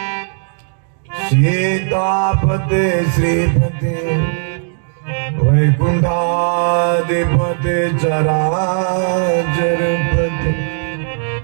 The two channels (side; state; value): left; silent; digital silence